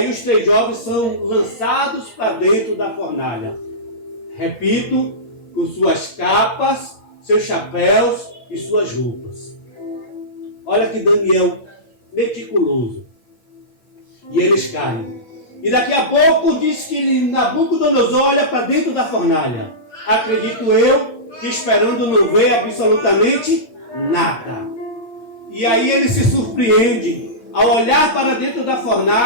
os 3 jovens são lançados para dentro da fornalha. Repito, com suas capas, seus chapéus e suas roupas. Olha que Daniel meticuloso. E eles caem. E daqui a pouco diz que Nabucodonosor olha para dentro da fornalha. Acredito eu que esperando não ver absolutamente nada. E aí ele se surpreende ao olhar para dentro da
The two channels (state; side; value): late; right; 8.5 ms